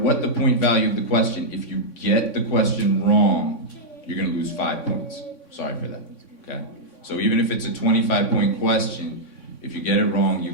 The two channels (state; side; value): late; right; 3.6 ms